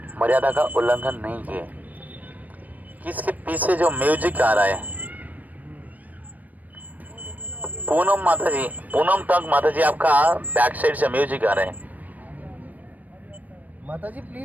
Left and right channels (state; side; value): late; left; 0.078 ms